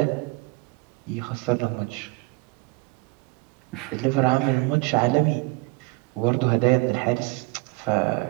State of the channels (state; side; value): quieter; left; 25.1 dB